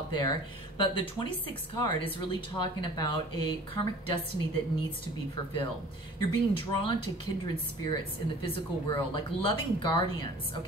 there. But the 26th card is really talking about a karmic destiny that needs to be fulfilled. You're being drawn to kindred spirits in the physical world, like loving guardians,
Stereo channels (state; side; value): normal; both; correlation 0.46